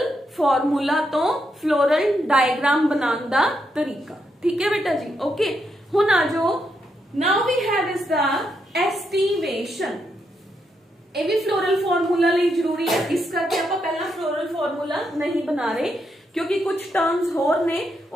फॉर्मूला तो फ्लोरल डायग्राम बनाने का तरीका, ठीक है बेटा जी, ओके। हुण आ जाओ, now we have is the aestivation. ये भी फ्लोरल फॉर्मूला लिए जरूरी है, इस करके आप पहला फ्लोरल फॉर्मूला नहीं बना रहे, क्योंकि कुछ टर्म्स होर ने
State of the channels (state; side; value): normal; both; correlation 0.81